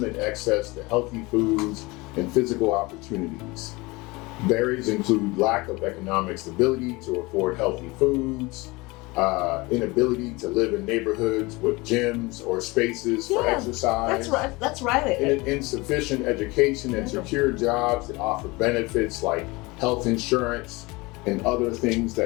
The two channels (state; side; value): quieter; right; 23.6 dB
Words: access to healthy foods and physical opportunities. Barriers include lack of economic stability to afford healthy foods, inability to live in neighborhoods with gyms or spaces for exercise. That's right. Insufficient education and secure jobs that offer benefits like health insurance and other things